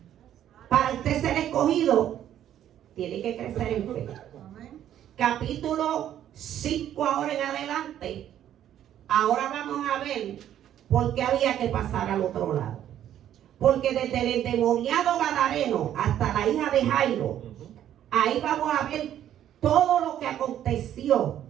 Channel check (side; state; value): left; quieter; 11.0 dB